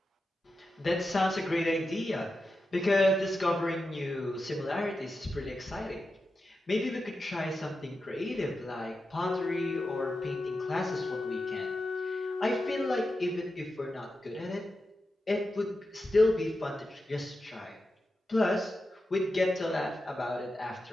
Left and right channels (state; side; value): normal; both; correlation 0.90